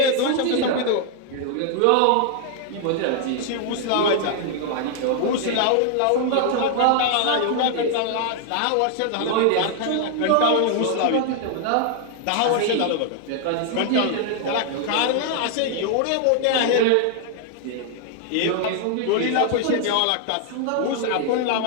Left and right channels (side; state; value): both; different; correlation 0.00